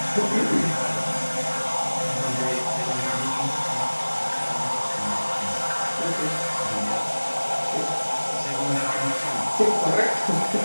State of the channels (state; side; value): inverted; both; correlation -1.00